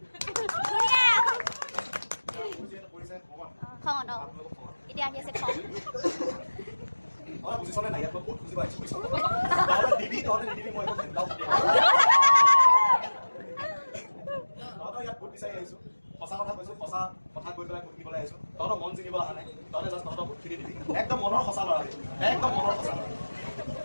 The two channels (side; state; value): both; inverted; correlation -1.00